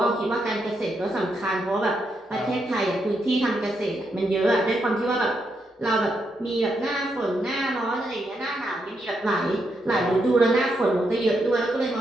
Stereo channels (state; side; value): normal; both; correlation 0.81